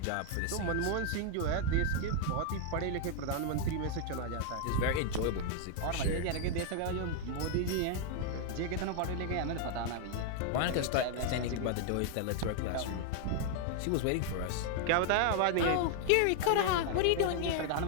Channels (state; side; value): different; both; correlation 0.00